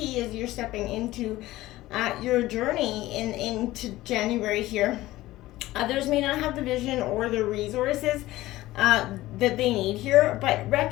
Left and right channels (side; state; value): right; quieter; 16.9 dB